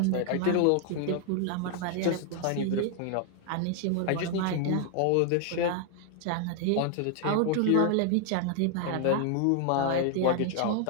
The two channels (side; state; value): both; different; correlation 0.00